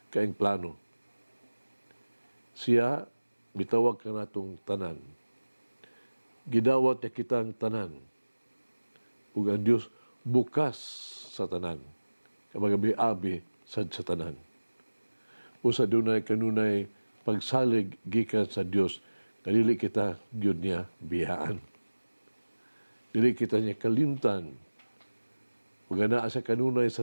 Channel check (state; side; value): inverted; both; correlation -1.00